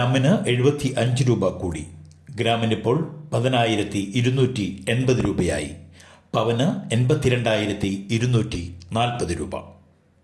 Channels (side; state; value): both; identical; correlation 1.00